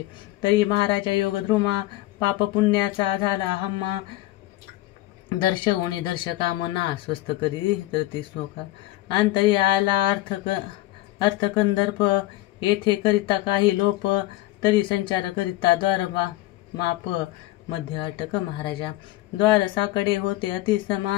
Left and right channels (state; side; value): quieter; right; 17.0 dB